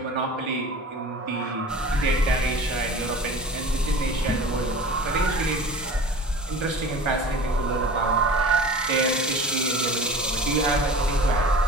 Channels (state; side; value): normal; both; correlation 0.39